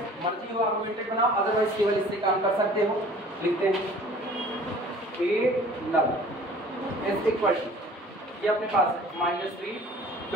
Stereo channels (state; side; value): normal; both; correlation 0.49